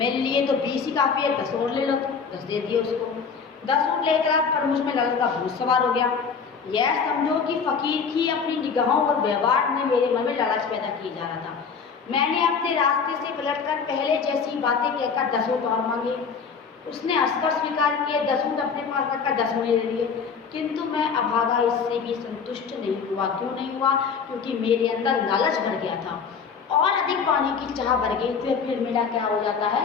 लिए तो 20 ही काफ़ी है, 10 और ले लो। तो 10 दे दिए उसको। 10 ऊँट लेकर पर मुझ में लालच का भूत सवार हो गया। यह समझो कि फकीर की अपनी निगाहों और व्यवहार में मेरे मन में लालच पैदा किया जा रहा था। मैंने अपने रास्ते से पलटकर पहले जैसी बातें कहकर 10 ऊँट और मांगे। उसने हंसकर स्वीकार किए, 10 ऊँट अपने पास रखकर 10 मुझे दे दिए। किंतु मैं अभागा इससे भी संतुष्ट नहीं हुआ। क्यों नहीं हुआ? क्योंकि मेरे अंदर लालच भर गया था और अधिक पाने की चाह भर गई। फिर मेरा क्या हो जाता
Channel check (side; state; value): right; quieter; 5.9 dB